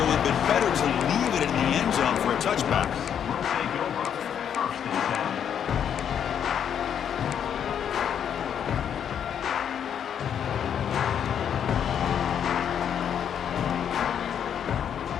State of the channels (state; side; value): quieter; right; 8.6 dB